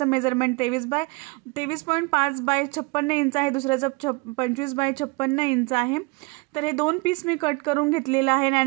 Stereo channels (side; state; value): left; quieter; 26.9 dB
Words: मेजरमेंट 23.5 बाय 56 इंच आहे, दुसऱ्याचं 25 बाय 56 इंच आहे। तर हे 2 पीस मी कट करून घेतलेले आहे